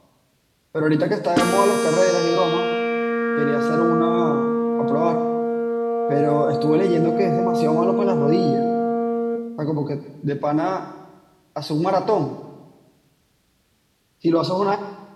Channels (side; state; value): both; identical; correlation 1.00